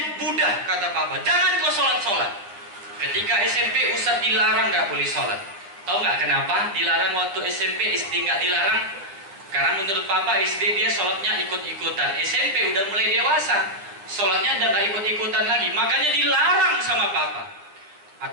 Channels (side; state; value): left; late; 10 ms